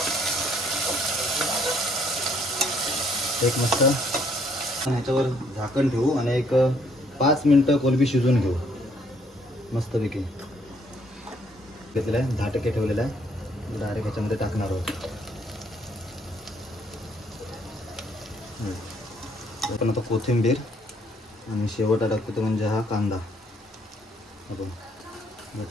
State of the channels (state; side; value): normal; both; correlation 0.67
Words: एक मस्त ह्याच्यावर झाकण ठेवू आणि एक 5 मिनटं कोलंबी शिजवून घेऊ मस्तपैकी. घेतलेला आहे 10% ठेवलेला आहे. डायरेक्ट ह्याच्यामध्ये टाकणार आहोत. आपण आता कोथिंबीर आणि शेवटा टाकतो तो म्हणजे हा कांदा आपण